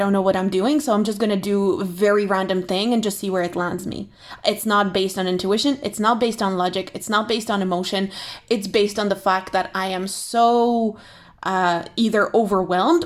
I'm doing, so I'm just going to do a very random thing and just see where it lands me. It's not based on intuition, it's not based on logic, it's not based on emotion. It's based on the fact that I am so either overwhelmed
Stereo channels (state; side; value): identical; both; correlation 1.00